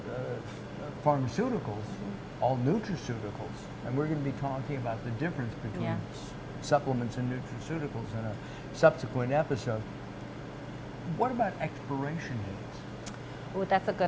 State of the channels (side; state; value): both; identical; correlation 1.00